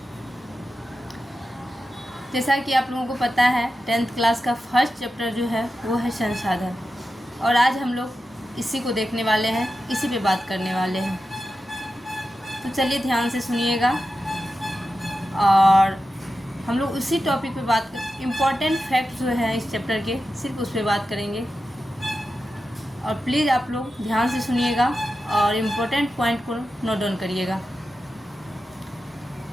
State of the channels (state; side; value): normal; both; correlation 0.91